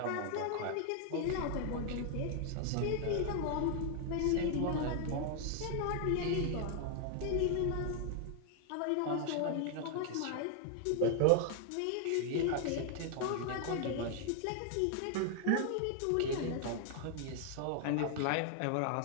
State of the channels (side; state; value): both; different; correlation 0.00